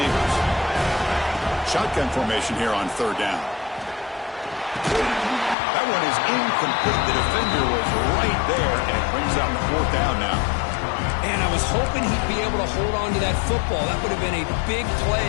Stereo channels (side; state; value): right; drops out; at 5.6 s